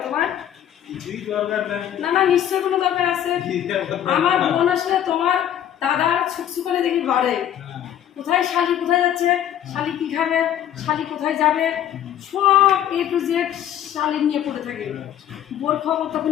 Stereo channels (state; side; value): quieter; right; 10.7 dB